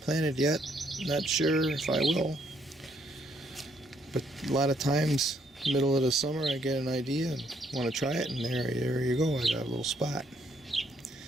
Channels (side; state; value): both; normal; correlation 0.70